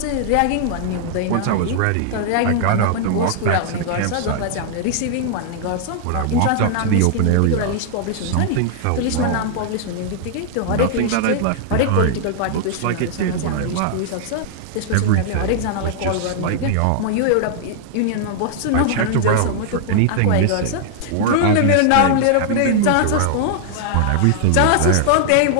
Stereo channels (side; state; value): both; different; correlation -0.01